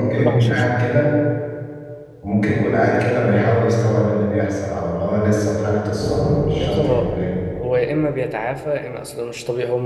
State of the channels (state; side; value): identical; both; correlation 1.00